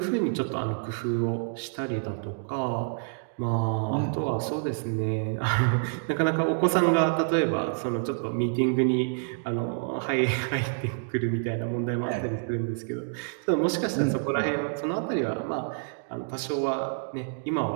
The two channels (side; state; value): left; silent; digital silence